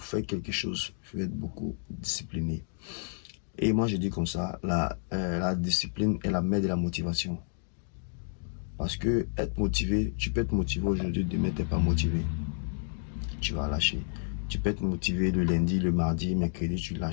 faites quelque chose, il faut être beaucoup discipliné. Et moi, je dis comme ça, la discipline est la mère de la motivation. Parce que être motivé, tu peux être motivé aujourd'hui, demain, tu n'es pas motivé. Tu vas lâcher. Tu peux être motivé le lundi, le mardi, mercredi, tu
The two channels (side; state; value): right; silent; digital silence